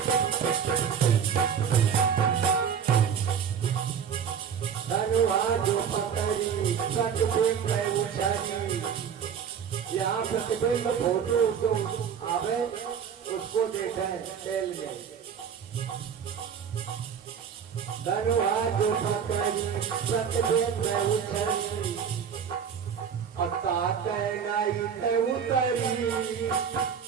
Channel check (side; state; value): left; quieter; 7.5 dB